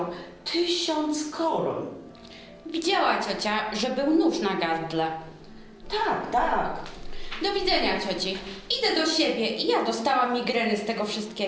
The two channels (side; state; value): both; identical; correlation 1.00